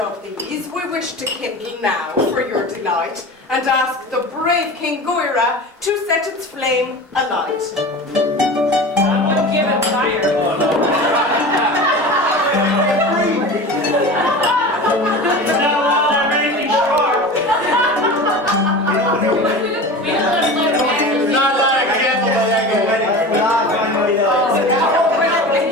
these we wish to kindle now for your delight, and ask the brave King Goira to set its flame alight. Give it fire.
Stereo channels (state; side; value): normal; both; correlation 0.33